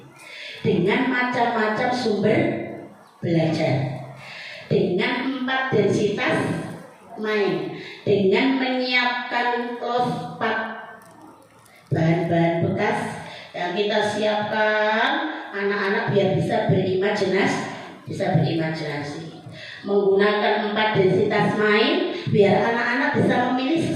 dengan macam-macam sumber belajar, dengan 4 densitas main, dengan menyiapkan close pack, bahan-bahan bekas yang kita siapkan anak-anak biar bisa berimajinasi, menggunakan 4 densitas main biar anak-anak bisa memilih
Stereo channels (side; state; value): both; identical; correlation 1.00